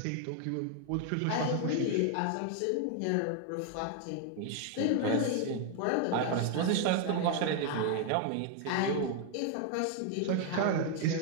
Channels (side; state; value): both; different; correlation 0.00